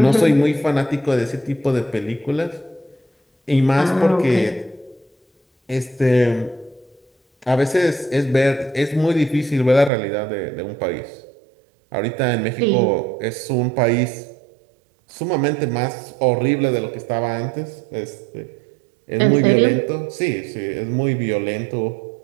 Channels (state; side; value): drops out; left; at 9.9 s